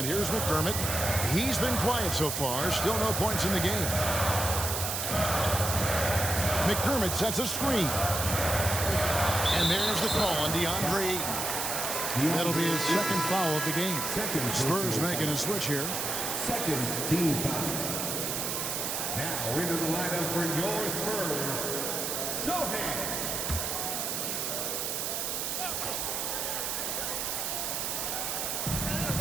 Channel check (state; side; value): noise; right; hiss, 1 dB below the sound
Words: here's McDermott. He's been quiet so far. Still no points in the game. McDermott sets a screen. And there's the call on DeAndre Ayton. That'll be his second foul of the game. Spurs making a switch here. Second team foul. Now into the lineup for your Spurs, Sohan.